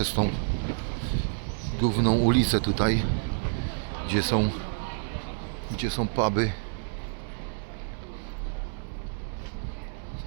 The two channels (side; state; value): left; silent; 59 dB below the other